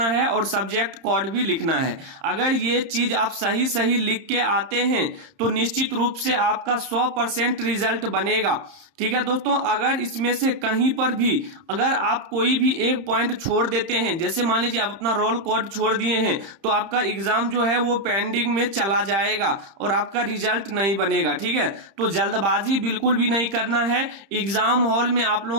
है और सब्जेक्ट कोड भी लिखना है। अगर ये चीज आप सही लिख के आते हैं तो निश्चित रूप से आपका 100% रिजल्ट बनेगा। ठीक है दोस्तों, अगर इसमें से कहीं पर भी अगर आप कोई भी एक पॉइंट छोड़ देते हैं, जैसे मान लीजिए आप अपना रोल कोड छोड़ दिए हैं, तो आपका एग्जाम जो है वो पेंडिंग में चला जाएगा और आपका रिजल्ट नहीं बनेगा। ठीक है, तो जल्दबाजी बिल्कुल भी नहीं करना है। एग्जाम हॉल में आप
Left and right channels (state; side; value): late; left; 31 ms